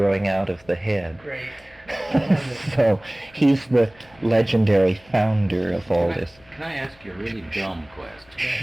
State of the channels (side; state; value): left; noise; hum, 28 dB below the sound